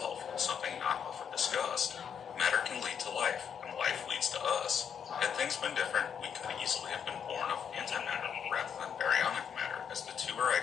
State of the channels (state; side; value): quieter; right; 7.7 dB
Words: something not often discussed. Matter can lead to life, and life leads to us. Had things been different, we could easily have been born of antimatter rather than baryonic matter, as the two are